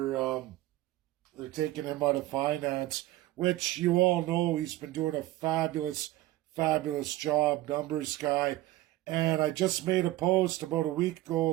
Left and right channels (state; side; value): quieter; left; 16.8 dB